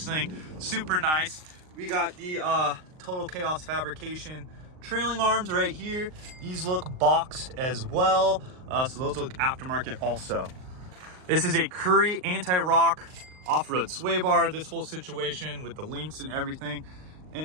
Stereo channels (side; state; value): left; late; 39 ms